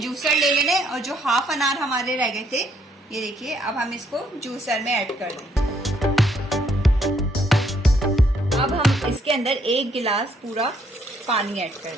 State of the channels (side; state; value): both; normal; correlation 0.69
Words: जूसर ले लेना है और जो हाफ अनार हमारे रह गए थे, ये देखिए, अब हम इसको जूसर में ऐड कर देंगे। अब हम इसके अंदर 1 गिलास पूरा पानी ऐड कर